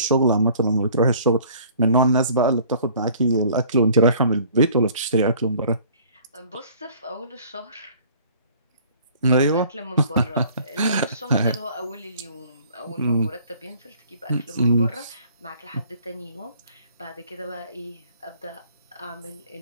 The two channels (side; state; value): both; inverted; correlation -0.54